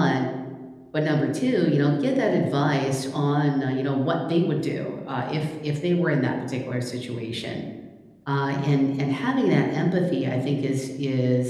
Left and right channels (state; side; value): identical; both; correlation 1.00